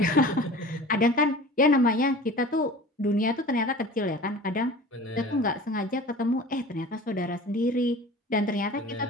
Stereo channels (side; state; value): both; normal; correlation 0.40